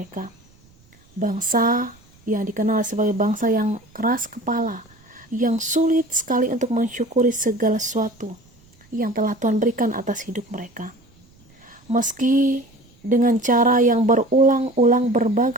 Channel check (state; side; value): noise; right; rumble, 30 dB below the sound